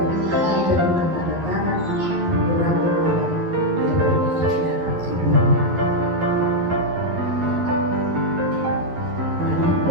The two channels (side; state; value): left; late; 12 ms